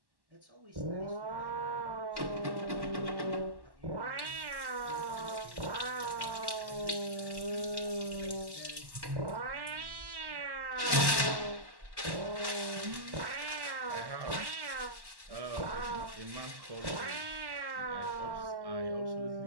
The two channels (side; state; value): left; late; 1.1 ms